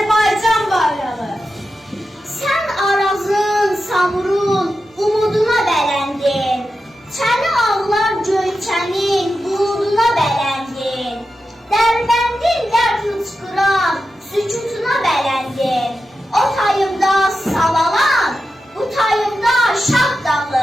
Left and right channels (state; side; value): normal; both; correlation 0.90